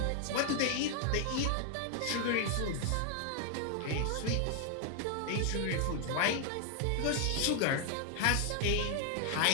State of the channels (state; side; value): different; both; correlation 0.00